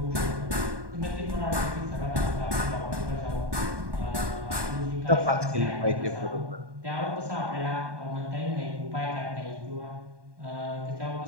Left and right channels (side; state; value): left; late; 1.2 ms